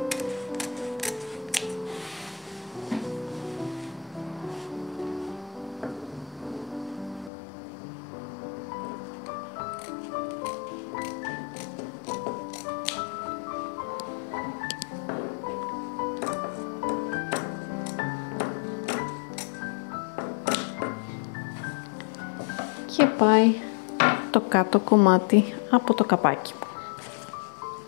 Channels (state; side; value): drops out; right; at 7.3 s